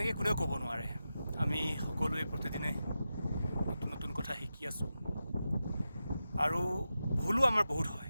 কোনেও ক'ব নোৱাৰে। আমি সকলোৱে প্ৰতিদিনে নতুন নতুন কথা শিকি আছোঁ আৰু ভুলো আমাৰ বহুত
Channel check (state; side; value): inverted; both; correlation -0.91